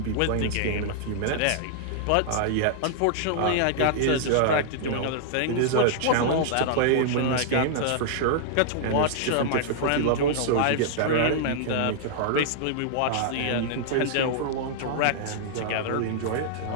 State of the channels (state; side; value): different; both; correlation -0.01